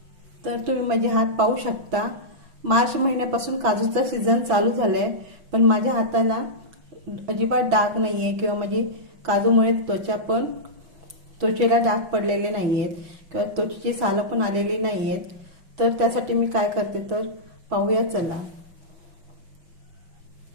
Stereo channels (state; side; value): late; left; 6.0 ms